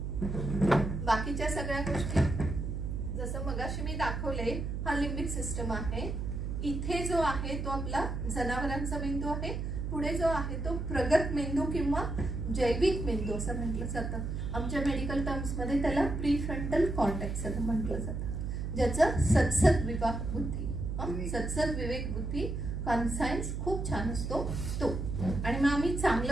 बाकीच्या सगळ्या गोष्टी जसं मगाशी मी दाखवले, हा लिम्बिक सिस्टम आहे. इथे जो आहे तो आपला जनावरांचा मेंदू आहे. पुढे जो आहे तो प्रगत मेंदू किंवा जैविक मेंदू असं म्हटलं जातं. आमच्या मेडिकल टर्म्स मध्ये त्याला प्रीफ्रंटल कॉर्टेक्स असं म्हटलं जातं, ज्याचं सद्सद विवेक बुद्धी, सद्सद विवेक बुद्धी कॉन्सायन्स खूप छान असतो तो. आणि मग आम्ही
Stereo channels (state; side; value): noise; right; hum, 3 dB below the sound